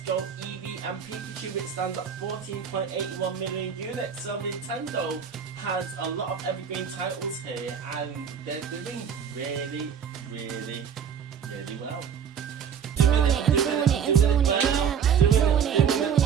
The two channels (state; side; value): quieter; left; 7.6 dB